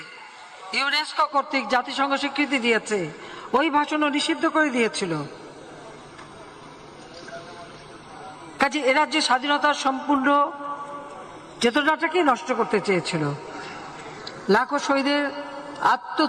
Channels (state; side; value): identical; both; correlation 1.00